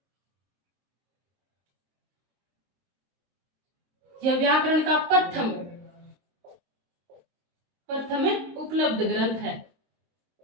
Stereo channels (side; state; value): left; late; 23 ms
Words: यह व्याकरण का प्रथम उपलब्ध ग्रंथ